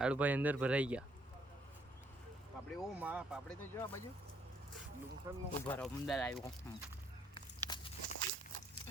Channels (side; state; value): both; normal; correlation 0.68